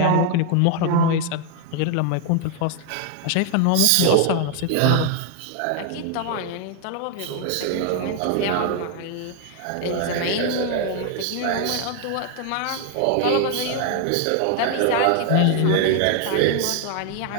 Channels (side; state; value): both; different; correlation 0.00